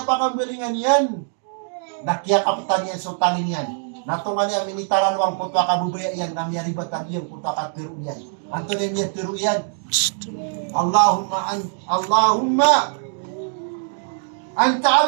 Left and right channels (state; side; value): silent; left; 64 dB below the other